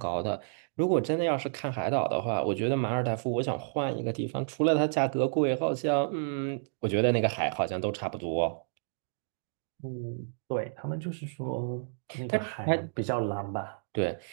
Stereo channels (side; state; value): left; silent; digital silence